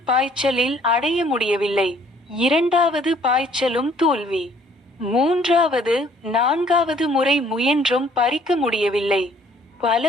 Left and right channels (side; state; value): both; normal; correlation 0.60